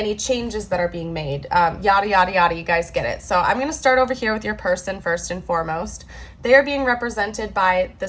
changes that are being made, yada, yada, yada, you guys get it. So I'm going to start over here with your person first and foremost. They are being represented by the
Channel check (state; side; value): identical; both; correlation 1.00